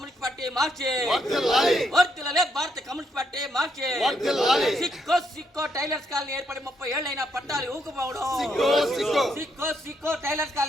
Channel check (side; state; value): both; normal; correlation 0.75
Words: పార్టీ మార్చి. వర్ధిల్లాలి. వర్ధిల్లాలి భారత కమ్యూనిస్ట్ పార్టీ మార్చి. వర్ధిల్లాలి. సిక్కో టైలర్స్ కాలనీ ఏర్పడి 30 ఏళ్ళైనా పట్టాలు ఇవ్వకపోవడం. సిక్కో టైలర్స్